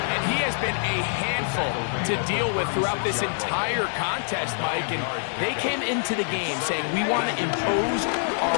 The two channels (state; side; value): silent; right; digital silence